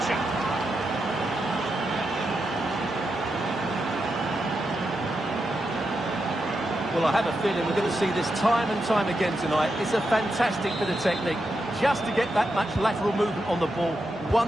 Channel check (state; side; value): normal; both; correlation 0.86